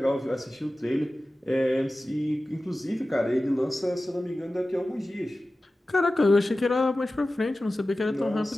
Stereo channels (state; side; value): normal; both; correlation 0.95